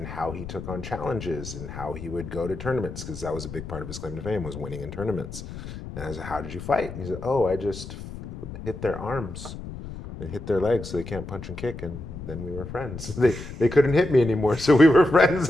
how he took on challenges and how he would go to tournaments, because that was a big part of his claim to fame, was winning in tournaments. And I said, "How did you fight?" And he said, "Oh, I just hit their arms and hit their legs so they can't punch and kick, and then we were friends." They couldn't hit me anymore, so we were friends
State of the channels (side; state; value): left; noise; rumble, 10 dB below the sound